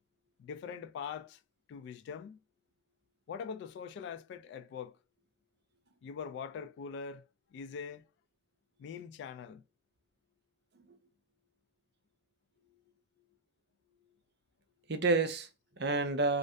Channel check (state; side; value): normal; both; correlation -0.13